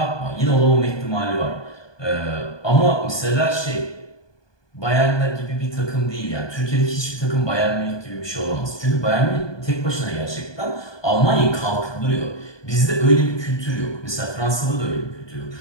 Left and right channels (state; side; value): late; right; 1.2 ms